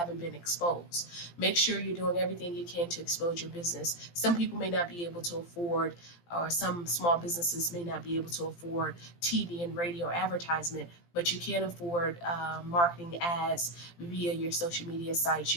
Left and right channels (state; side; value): late; right; 17 ms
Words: been exposed. Make sure you're doing everything you can to expose your business. Some people may not be able to afford, or some small businesses may not be able to afford TV and radio advertisement, but you can afford marketing ads via your social media sites.